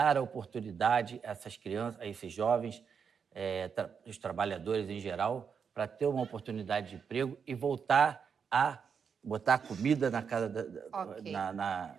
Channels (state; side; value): quieter; left; 6.5 dB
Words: a oportunidade a essas crianças, a esses jovens, os trabalhadores em geral, para ter uma oportunidade de emprego e voltar a botar comida na casa